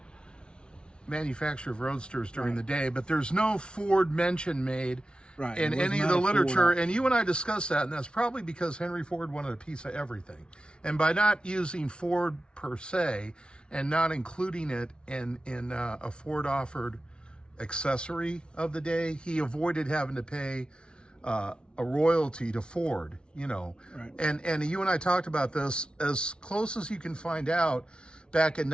manufacturer of Roadsters during the day, but there's no Ford mention made in any of the literature. And you and I discussed that, and that's probably because Henry Ford wanted a piece of everything. And by not using Ford per se and not including it in a Ford offered accessory of the day, he avoided having to pay a a royalty to Ford, you know. Right. And you and I talked about this. As close as you can find out, back in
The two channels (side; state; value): right; late; 0.056 ms